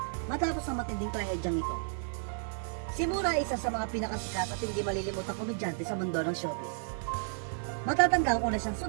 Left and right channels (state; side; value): silent; left; 56 dB below the other